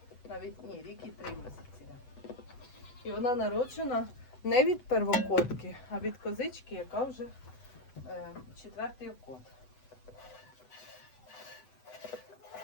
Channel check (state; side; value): late; right; 8.0 ms